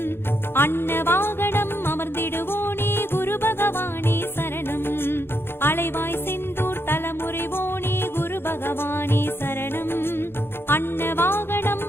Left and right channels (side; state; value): right; late; 0.11 ms